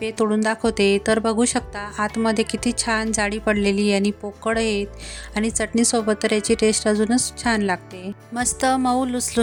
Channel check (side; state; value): both; identical; correlation 1.00